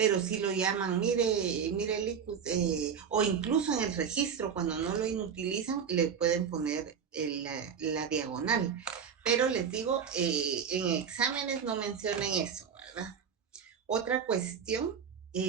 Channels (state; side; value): quieter; left; 7.1 dB